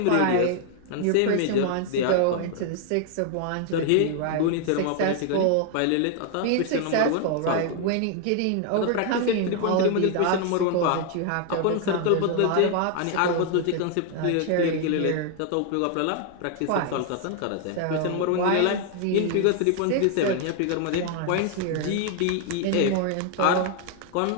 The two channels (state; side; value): different; both; correlation 0.00